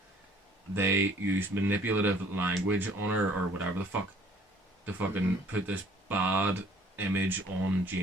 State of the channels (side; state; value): both; normal; correlation 0.56